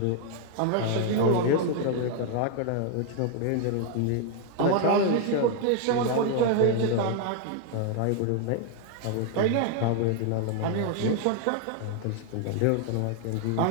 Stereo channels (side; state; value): both; different; correlation 0.00